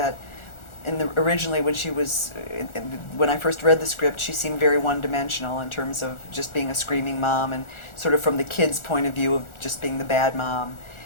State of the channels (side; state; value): right; late; 1.4 ms